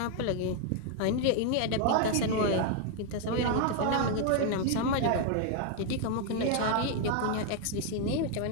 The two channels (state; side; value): different; both; correlation 0.01